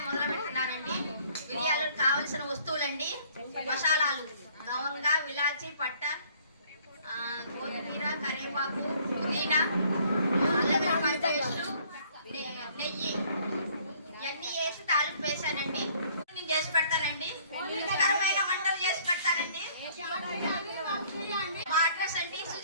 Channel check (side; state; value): both; inverted; correlation -0.59